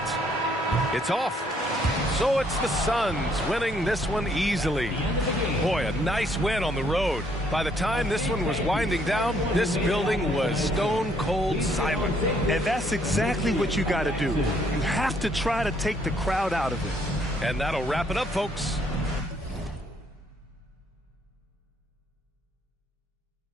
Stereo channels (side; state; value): both; normal; correlation 0.68